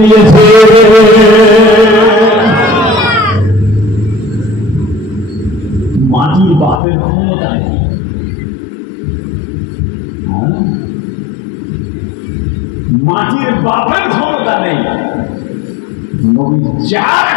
দিয়েছে। মাটির বাপের ক্ষমতা নেই, মাটির বাপের ক্ষমতা নেই, নবী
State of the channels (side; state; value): right; drops out; at 6.8 s